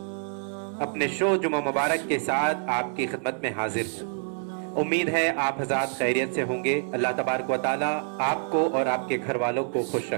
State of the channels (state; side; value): silent; left; 60 dB below the other